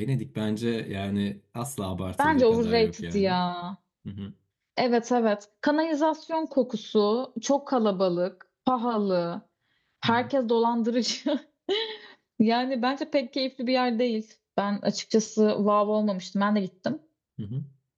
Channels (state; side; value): identical; both; correlation 1.00